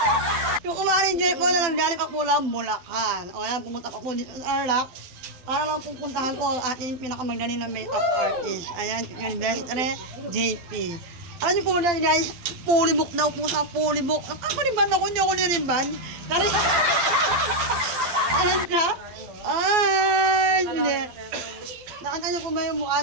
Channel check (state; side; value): late; left; 12 ms